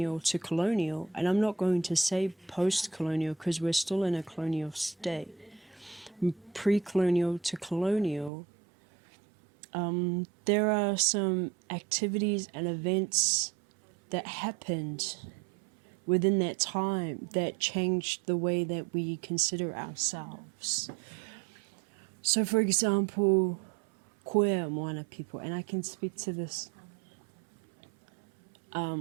to colonial, and I'm not going to say post-colonial because we're still in a colonial state, pre-colonial to colonial, there are some activities and events that happened within that time that changed the way that we consider ourselves. So, for example, Queer Moana people, and I can speak to this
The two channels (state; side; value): drops out; left; at 8.3 s